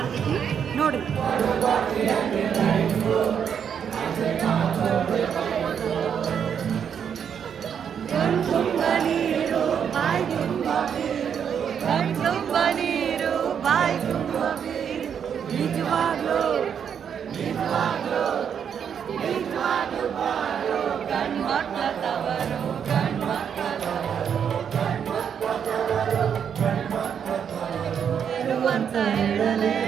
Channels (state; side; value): quieter; left; 7.9 dB